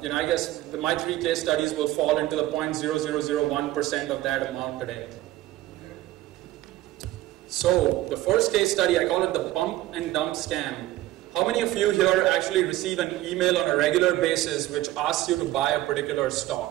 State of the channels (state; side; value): quieter; left; 15.9 dB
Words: guess my 3 case studies will fall into the 0.0001% of that amount today. So the first case study, I call it the pump and dump scam. How many of you here actually receive an email on a regular basis which asks you to buy a particular